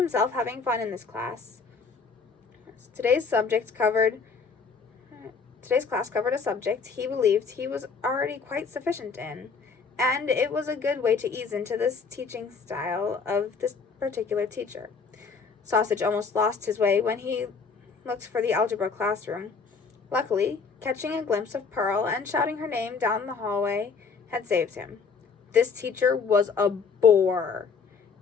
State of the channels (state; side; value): quieter; right; 5.2 dB